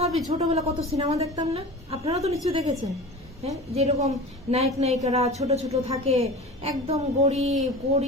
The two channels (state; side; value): normal; both; correlation 0.35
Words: ছোটবেলা কত সিনেমা দেখতাম না, আপনারা তো নিশ্চয়ই দেখেছেন। হ্যাঁ, যেরকম নায়ক নায়িকারা ছোট থাকে, একদম